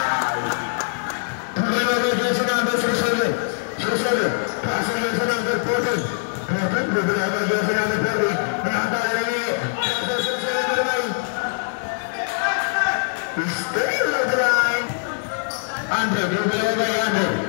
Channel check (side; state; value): right; silent; digital silence